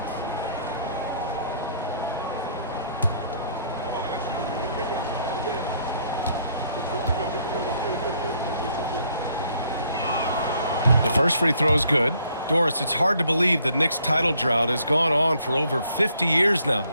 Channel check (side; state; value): both; inverted; correlation -0.66